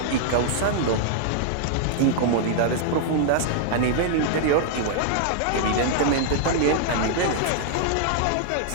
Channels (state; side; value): different; both; correlation -0.01